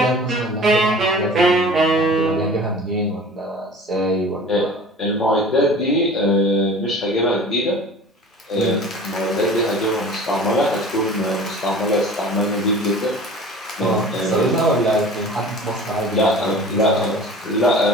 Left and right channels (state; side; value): normal; both; correlation 0.41